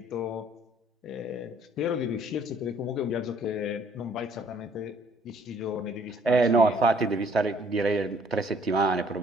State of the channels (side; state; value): both; normal; correlation 0.61